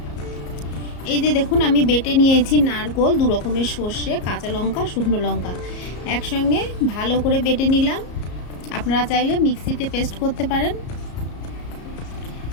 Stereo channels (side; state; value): right; late; 34 ms